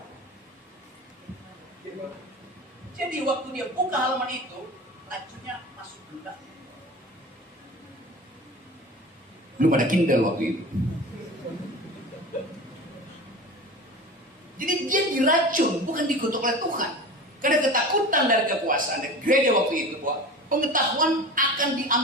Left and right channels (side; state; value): both; normal; correlation 0.34